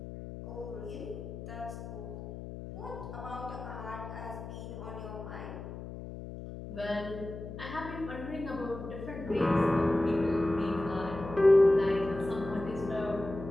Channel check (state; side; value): noise; left; hum, 10 dB below the sound